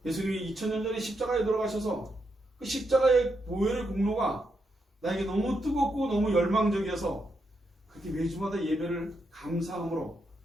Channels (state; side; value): normal; both; correlation 0.82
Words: 예수님이 2000년 전에 십자가에 돌아가셔서 그 십자가의 보혈의 공로가 나에게 너무 뜨겁고 너무 열망적이어서 그렇게 매주마다 예배를 감사함으로